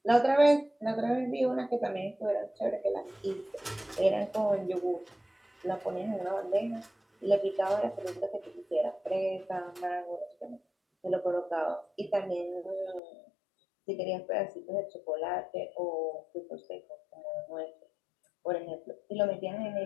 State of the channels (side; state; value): right; drops out; at 13.0 s